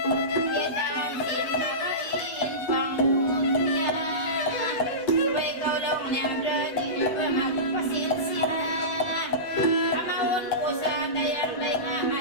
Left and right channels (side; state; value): right; late; 8.0 ms